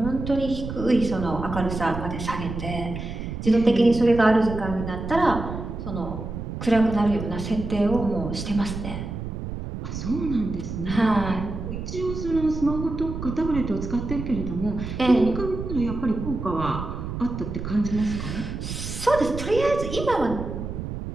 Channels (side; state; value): right; noise; rumble, 6 dB below the sound